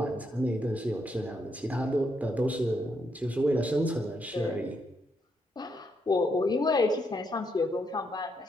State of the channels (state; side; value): normal; both; correlation 0.78